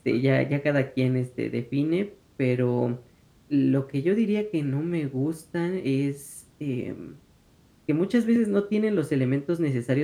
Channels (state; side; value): identical; both; correlation 1.00